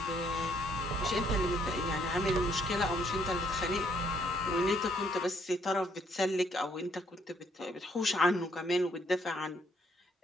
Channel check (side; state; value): both; normal; correlation 0.68